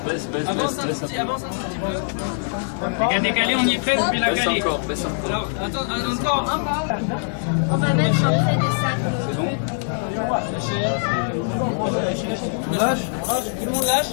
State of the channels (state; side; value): silent; right; 64 dB below the other